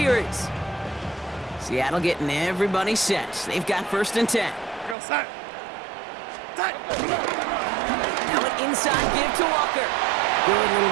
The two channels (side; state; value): left; drops out; at 5.0 s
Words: Seattle getting everybody set. They've got 1st and 10. Go set. Now an inside give to Walker. Good little